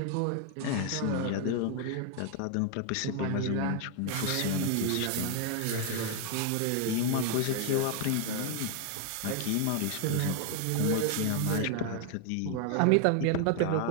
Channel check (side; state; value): both; different; correlation 0.00